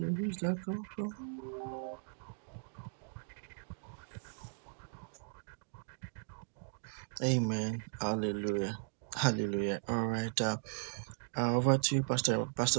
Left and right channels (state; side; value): silent; left; digital silence